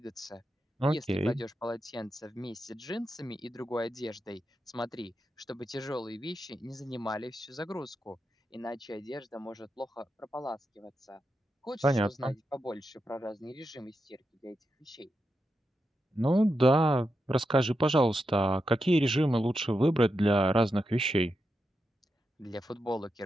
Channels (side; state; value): both; normal; correlation 0.87